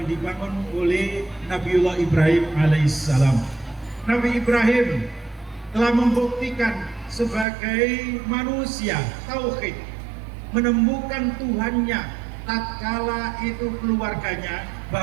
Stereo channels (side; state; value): left; drops out; at 7.5 s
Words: dibangun oleh Nabiullah Ibrahim alaihissalam. Nabi Ibrahim telah membuktikan sebagai manusia tauhid, menemukan Tuhannya tatkala itu keluarganya,